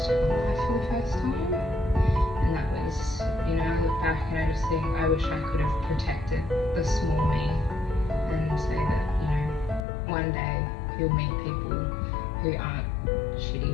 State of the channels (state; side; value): drops out; right; at 9.8 s